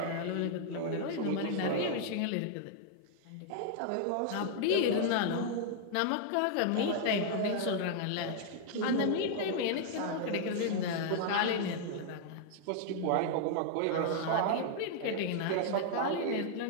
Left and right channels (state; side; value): different; both; correlation -0.01